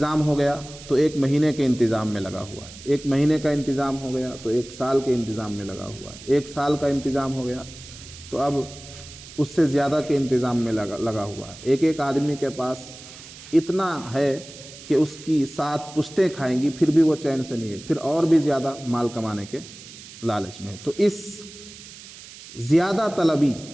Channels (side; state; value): right; noise; hiss, 17 dB below the sound